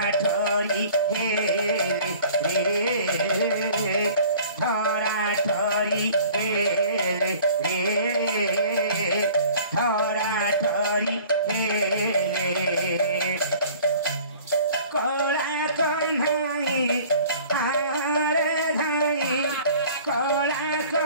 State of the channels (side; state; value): both; inverted; correlation -0.48